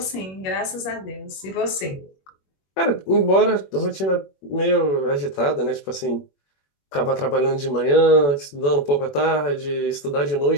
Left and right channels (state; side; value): late; right; 21 ms